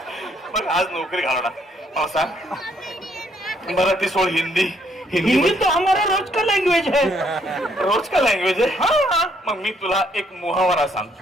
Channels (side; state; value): both; normal; correlation 0.69